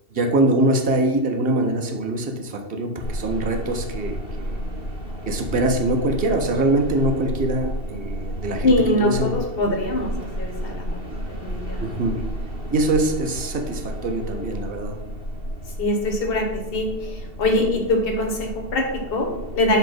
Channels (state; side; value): late; right; 2.7 ms